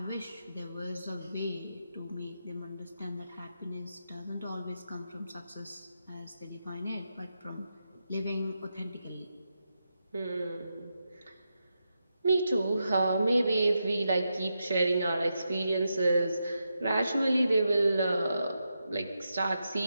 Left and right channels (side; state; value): both; inverted; correlation -0.86